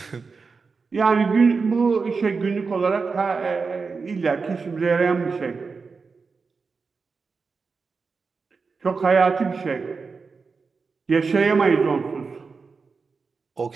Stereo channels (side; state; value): left; quieter; 4.8 dB